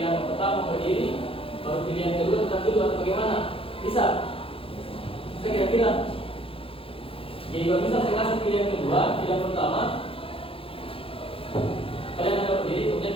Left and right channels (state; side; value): late; right; 0.27 ms